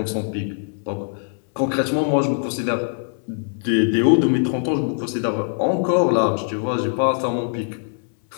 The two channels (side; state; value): right; silent; digital silence